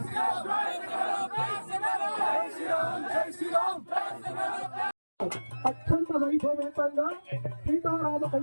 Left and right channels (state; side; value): inverted; both; correlation -1.00